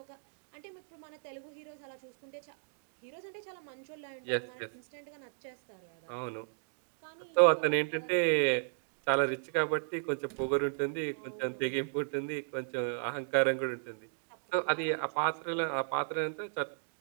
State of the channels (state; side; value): silent; left; digital silence